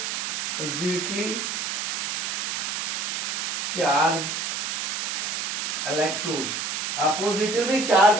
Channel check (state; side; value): noise; right; hiss, 1 dB below the sound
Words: charged electrodes, oppositely